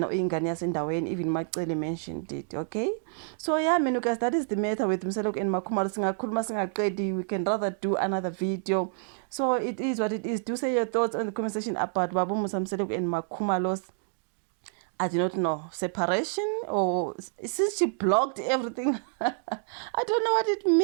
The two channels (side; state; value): left; silent; digital silence